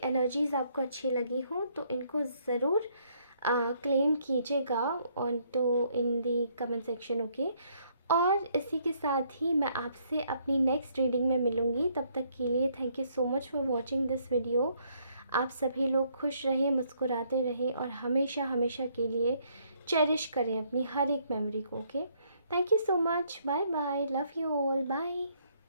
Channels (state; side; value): inverted; both; correlation -0.69